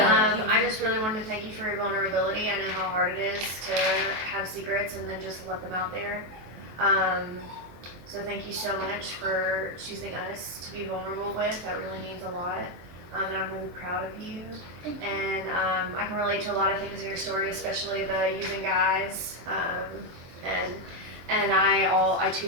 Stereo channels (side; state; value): left; late; 23 ms